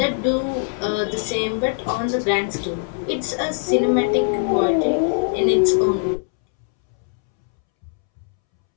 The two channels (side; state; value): right; silent; 65 dB below the other